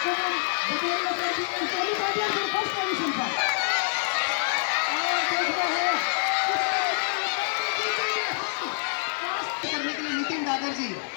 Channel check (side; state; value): right; silent; digital silence